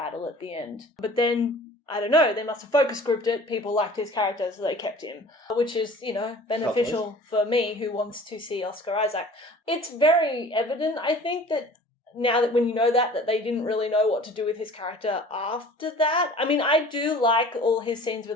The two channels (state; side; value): normal; both; correlation 0.46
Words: at the end. But then, I don't know, they must have focus grouped it, people liked his character so they kept him. Which is, beneficial for me who wants to see Oscar Isaac. It's very evident, I think, that now that when you know that they didn't really know what to do with his character after that. I mean, I do like all his scenes with